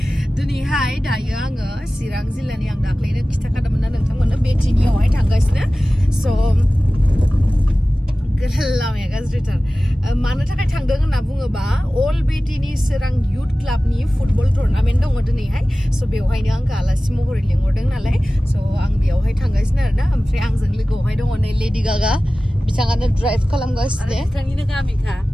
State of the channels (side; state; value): both; normal; correlation 0.97